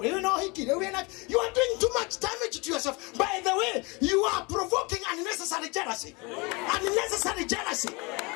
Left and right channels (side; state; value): right; quieter; 27.6 dB